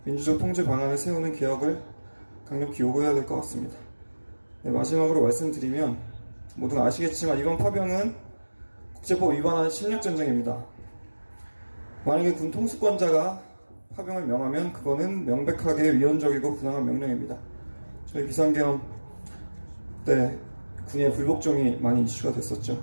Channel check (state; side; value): inverted; both; correlation -1.00